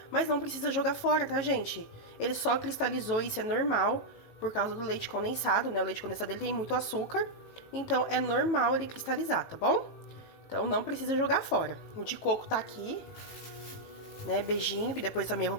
Mas não precisa jogar fora, tá, gente? Ele só cristalizou, isso é normal, por causa do leite condensado, né? O leite condensado ele tem muito açúcar, então é normal ele cristalizar, tá bom? Então não precisa jogar fora. O de coco tá aqui, né? Beijinho, que depois também eu vou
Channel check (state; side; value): late; right; 18 ms